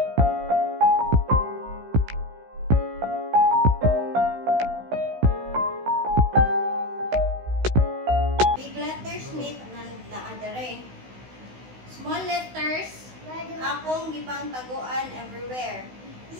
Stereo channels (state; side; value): late; left; 16 ms